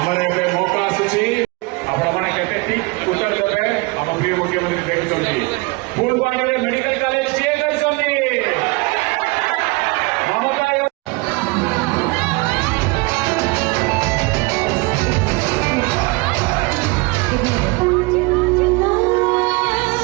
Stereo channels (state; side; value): quieter; left; 26.6 dB